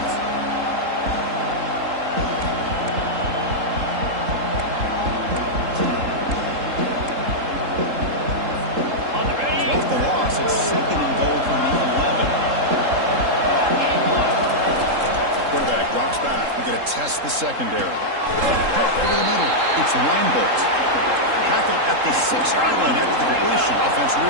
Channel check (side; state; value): left; late; 3.7 ms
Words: Test the secondary. Over the middle, it's Reinbolt. Tackle at the 6-yard line after the completion. Offense